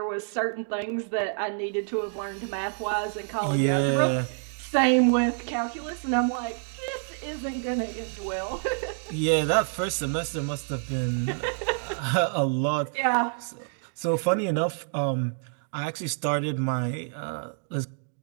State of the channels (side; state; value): left; silent; 56 dB below the other